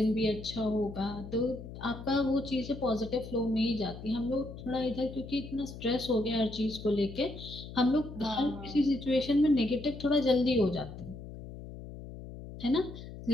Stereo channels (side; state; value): left; noise; hum, 12 dB below the sound